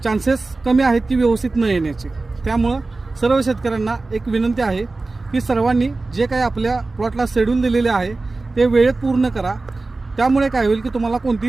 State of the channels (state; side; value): quieter; left; 3.4 dB